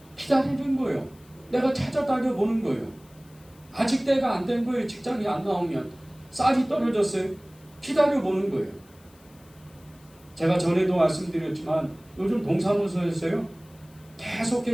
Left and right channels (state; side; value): noise; left; hiss, 28 dB below the sound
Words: 기다리는 거예요. 내가 찾아다녀 보는 거예요. 아직 때가 안 된 거예요. 직장이 안 나오면. 쌀이 떨어졌어요. 기다려 보는 거예요. 제가 전에도 말씀드렸지만 요즘 동사무소에서요,